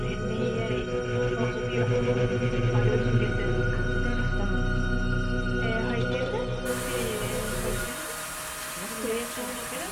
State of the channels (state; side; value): identical; both; correlation 1.00